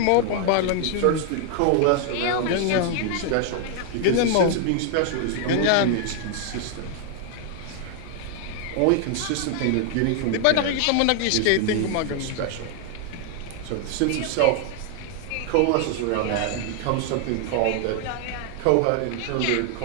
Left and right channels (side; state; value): both; different; correlation 0.00